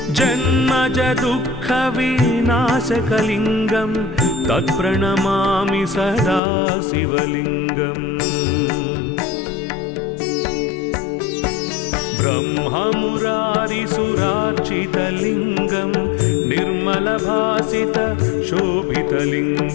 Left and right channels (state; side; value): drops out; right; at 6.4 s